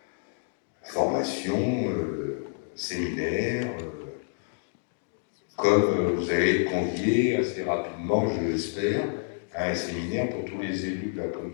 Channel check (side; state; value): right; silent; digital silence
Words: formations, séminaires, comme vous allez être conviés assez rapidement, je l'espère, à un séminaire pour tous les élus de la